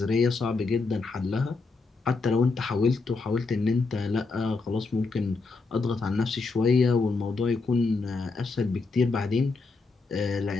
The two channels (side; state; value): right; quieter; 4.0 dB